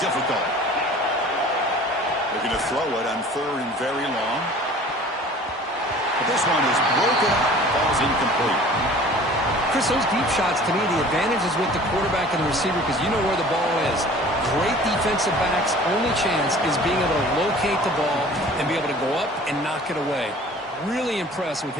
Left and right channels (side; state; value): both; normal; correlation 0.46